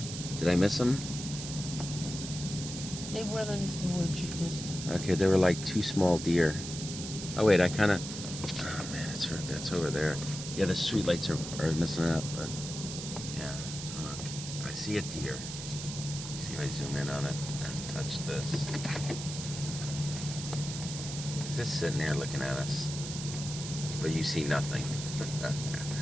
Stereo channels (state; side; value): noise; right; hiss, 8 dB below the sound